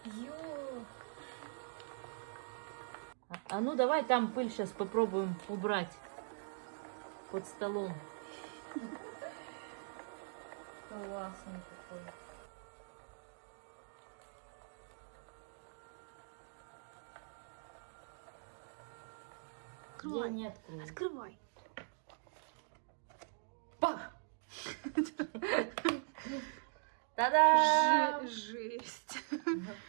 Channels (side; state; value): left; silent; digital silence